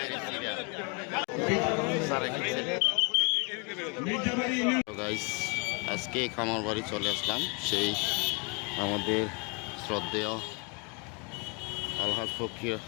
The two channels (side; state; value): right; quieter; 33.8 dB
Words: গাইস আজকে খামার বাড়ি চলে আসলাম সেই আমাদের শ্রদ্ধেয় আলহাজ ফকির